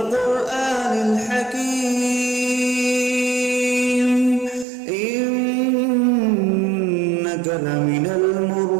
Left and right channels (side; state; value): left; drops out; at 4.7 s